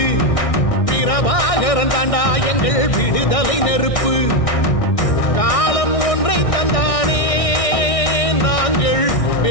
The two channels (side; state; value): right; late; 1.6 ms